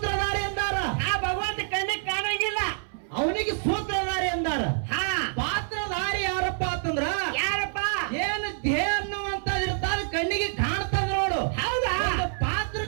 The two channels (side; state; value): left; silent; 60 dB below the other